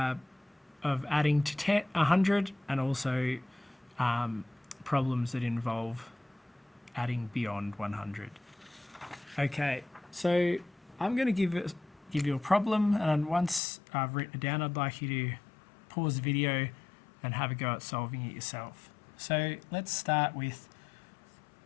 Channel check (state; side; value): drops out; right; at 13.6 s